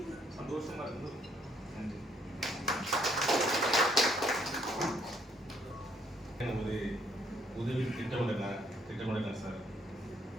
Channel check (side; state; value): both; normal; correlation 0.68